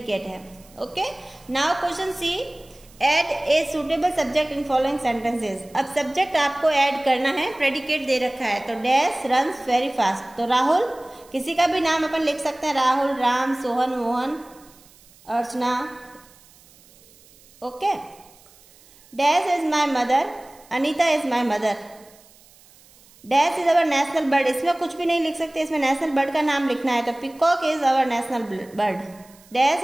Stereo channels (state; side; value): noise; right; hiss, 27 dB below the sound